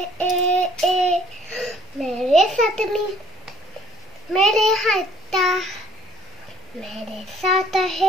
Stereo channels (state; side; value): normal; both; correlation 0.59